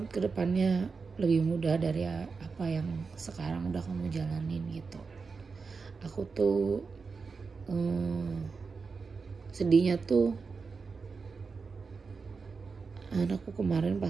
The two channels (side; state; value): left; quieter; 4.8 dB